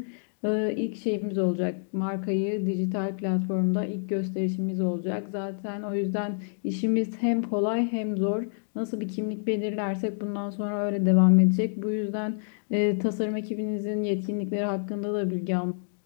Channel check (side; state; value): right; silent; digital silence